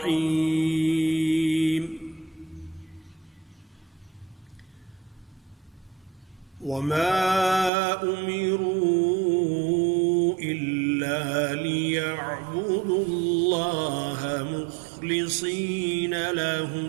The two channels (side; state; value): left; drops out; at 7.7 s